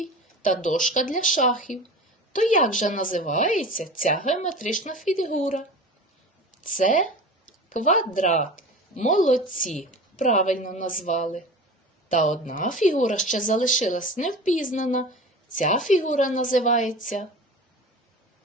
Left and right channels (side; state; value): both; normal; correlation 0.34